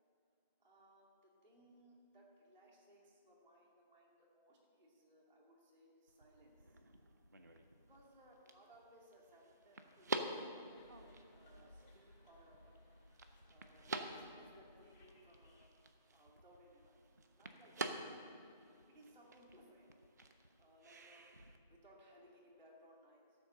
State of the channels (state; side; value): inverted; both; correlation -0.44